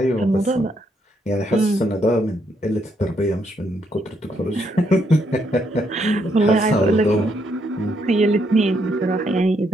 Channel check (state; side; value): normal; both; correlation 0.75